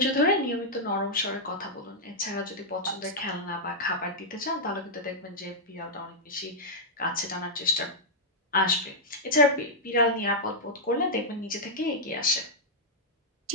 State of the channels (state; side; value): normal; both; correlation -0.07